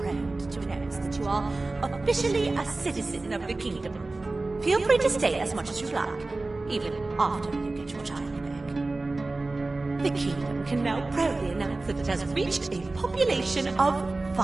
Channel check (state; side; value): quieter; left; 3.2 dB